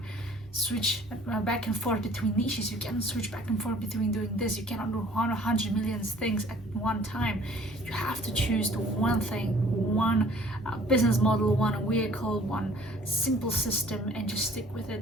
switch back and forth between niches. You cannot switch back and forth between doing this. You cannot do 100 million things at one time. You have to choose the one thing, one business model, one vehicle, one simple system, and just stick with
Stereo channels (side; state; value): both; normal; correlation 0.53